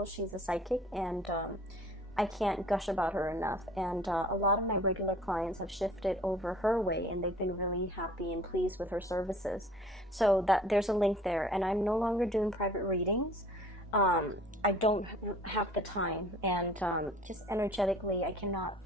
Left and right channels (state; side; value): normal; both; correlation 0.50